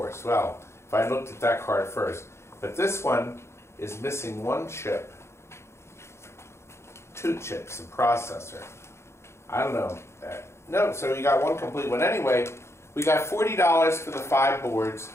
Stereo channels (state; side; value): late; right; 0.13 ms